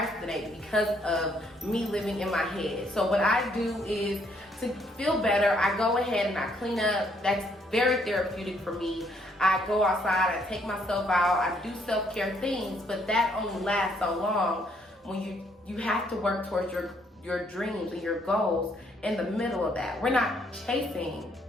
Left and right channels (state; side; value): normal; both; correlation 0.69